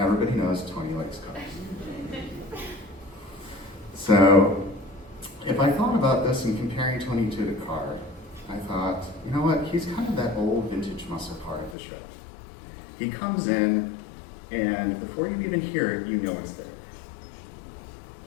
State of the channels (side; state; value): right; drops out; at 11.8 s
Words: everybody knows Tony likes cars. So if I thought about this and comparing Tony to the car, I thought, you know what, he's kind of that old vintage muscle car at the show. He comes in, and before you even hear it, you know it's there.